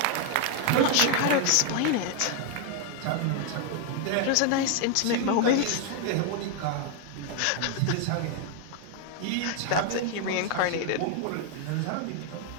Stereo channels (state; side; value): different; both; correlation 0.01